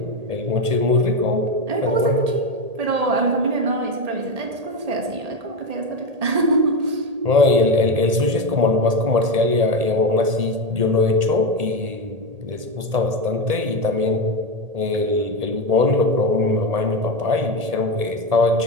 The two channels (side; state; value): left; late; 1.8 ms